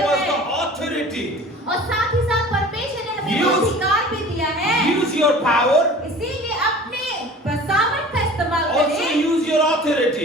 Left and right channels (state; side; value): normal; both; correlation 0.43